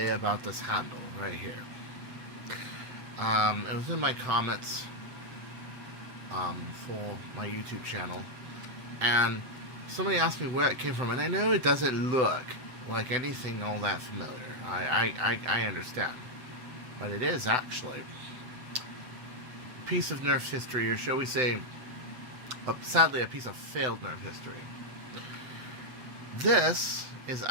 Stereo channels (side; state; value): left; late; 7.9 ms